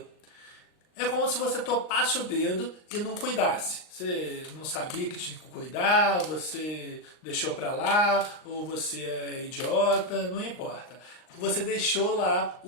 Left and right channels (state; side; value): late; right; 39 ms